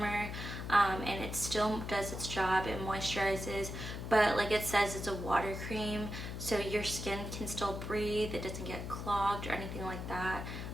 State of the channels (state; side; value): noise; left; hum, 6 dB below the sound